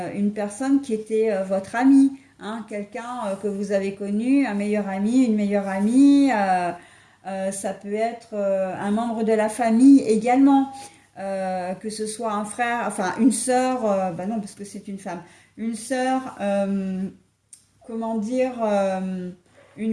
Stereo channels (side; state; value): both; identical; correlation 1.00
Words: personne qui était votre amie, hein, quelqu'un que vous avez connu, un meilleur ami, une meilleure amie. Ça peut être un membre de la famille également, que ce soit un frère, enfin une sœur, bah non, parce que c'est une femme une sœur, comment dire,